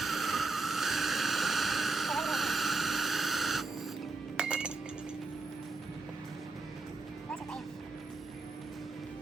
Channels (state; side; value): quieter; left; 3.6 dB